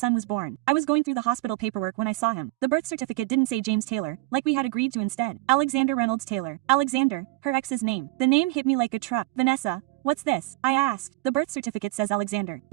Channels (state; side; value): quieter; left; 19.4 dB